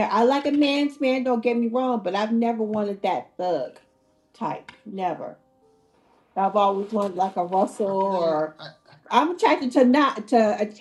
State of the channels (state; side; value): identical; both; correlation 1.00